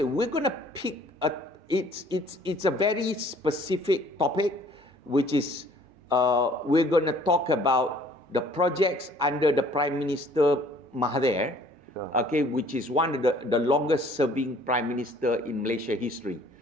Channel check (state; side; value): normal; both; correlation 0.56